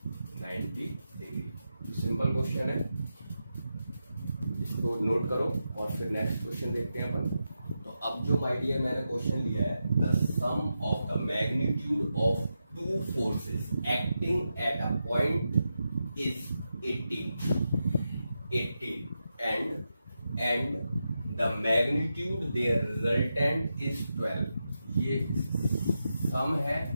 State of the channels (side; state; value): both; inverted; correlation -0.88